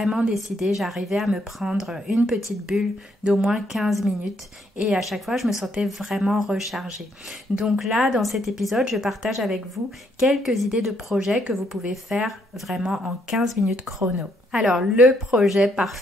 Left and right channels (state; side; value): normal; both; correlation 0.72